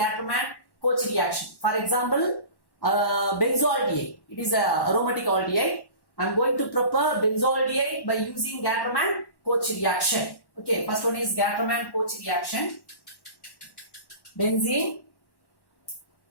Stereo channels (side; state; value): right; late; 1.1 ms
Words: reaction. For example, benzoaldehyde. It is a aromatic aldehyde. I am going to prepare benzoaldehyde by using Gattermann-Koch reaction. Okay. First one is Gattermann-Koch reaction. Benzene.